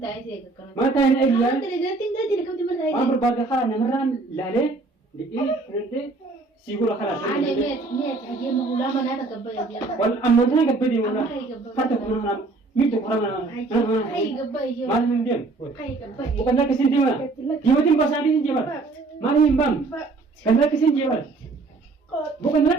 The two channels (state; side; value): quieter; left; 3.5 dB